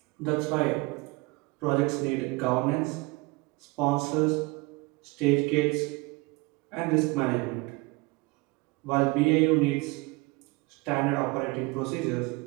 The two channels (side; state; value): left; quieter; 25.4 dB